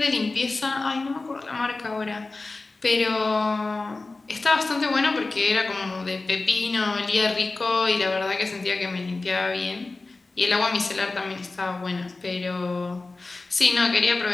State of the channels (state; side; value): quieter; right; 3.4 dB